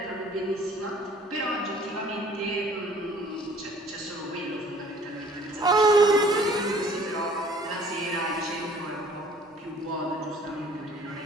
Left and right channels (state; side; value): normal; both; correlation 0.54